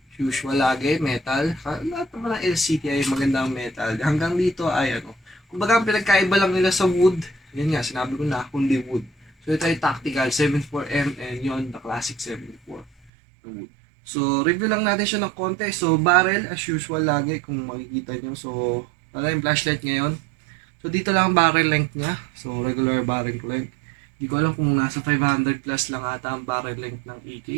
Usual lagi, metal. Lahat naman ng LCT ay magandang metal. Hanggang dito ay ano. Kumbaga ang pinagkaiba lang nila sa wood. Yan nga, sinabi ko na, kundi wood. So ito ay tactical 74M and yon the classic 74 wood. So review lang natin siya ng konti. So barrel as usual lagi kung makikita nyo. So wala yung flashlight ngayon. So dito lang ang barrel length niya. So regular barrel length. Hindi ko alam kung nasa 500 plus lang ata ang barrel length ng AK.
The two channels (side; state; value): left; drops out; at 13.1 s